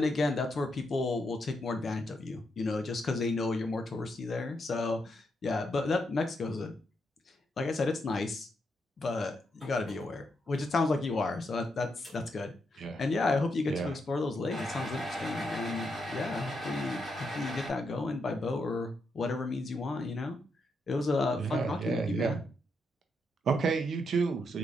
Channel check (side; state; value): both; normal; correlation 0.81